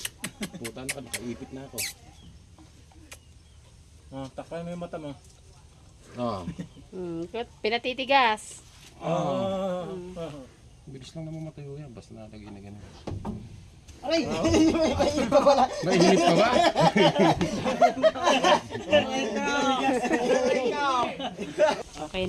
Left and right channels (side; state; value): both; identical; correlation 1.00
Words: Puta na ka, nakaipit na ako. Takay mo yung mata mo. Pinatitigas. Bilis lang naman matayo yan, basta nalagay na ganun. Aray! May iba pala. Mainit pa ba? Okay